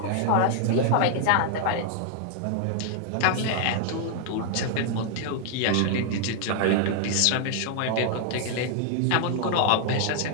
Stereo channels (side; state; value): both; different; correlation 0.00